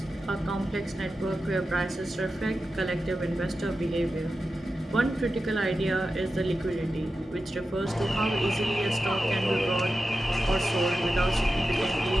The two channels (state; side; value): normal; both; correlation 0.92